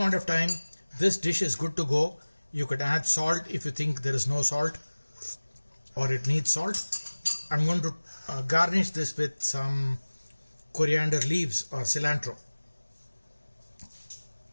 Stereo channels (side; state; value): both; inverted; correlation -1.00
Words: of time, this dish is good to go. You could add salt if you think there is no salt or it needs salt. I'm going to garnish this with some coriander leaves or cilantro.